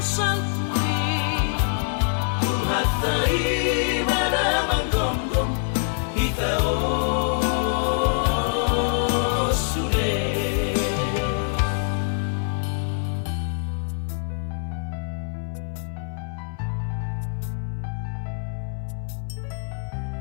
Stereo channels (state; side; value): silent; right; 62 dB below the other